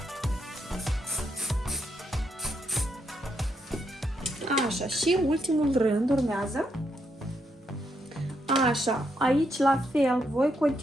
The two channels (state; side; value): normal; both; correlation 0.79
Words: Așa, și ultimul rând urmează. Așa, aici la fel voi